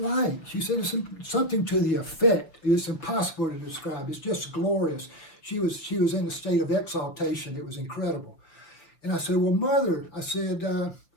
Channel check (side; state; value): right; late; 6.4 ms